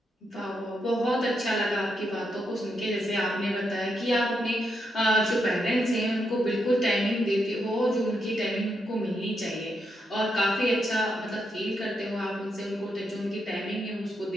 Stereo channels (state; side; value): normal; both; correlation 0.81